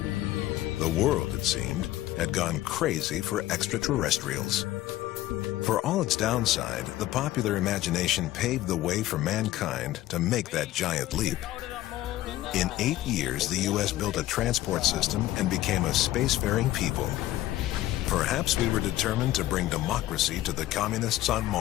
The world, it seemed, had gone crazy for extraterrestrials. For all its downside, the popular imagination paved the way for mankind to make that giant leap. In 8 years, the U.S. built a transport system and became a spacefaring people. Perhaps we were determined to bring democracy to the communists on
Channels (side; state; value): right; quieter; 15.2 dB